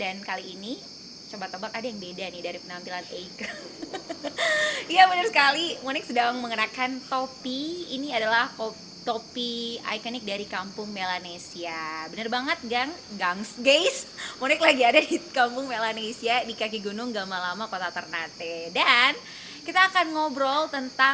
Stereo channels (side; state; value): both; identical; correlation 1.00